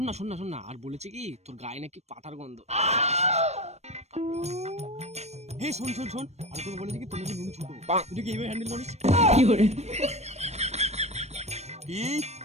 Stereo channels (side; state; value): left; late; 0.31 ms